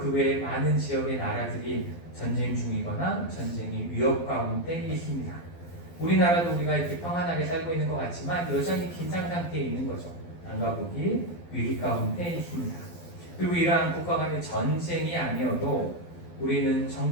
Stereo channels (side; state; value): right; late; 12 ms